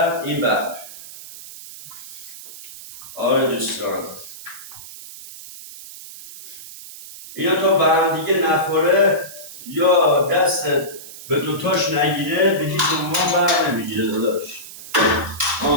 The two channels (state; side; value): noise; right; hiss, 15 dB below the sound